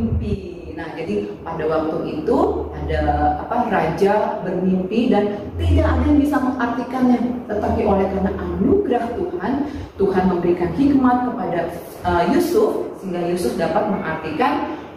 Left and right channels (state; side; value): identical; both; correlation 1.00